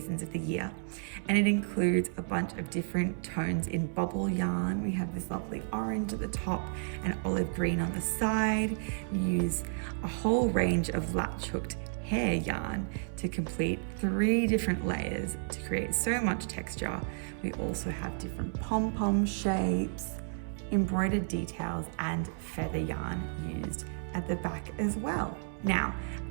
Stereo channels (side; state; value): left; silent; 56 dB below the other